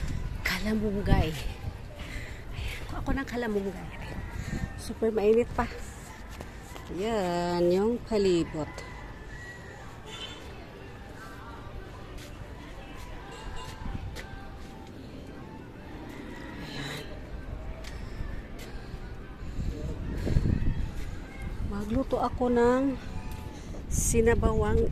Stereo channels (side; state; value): both; identical; correlation 1.00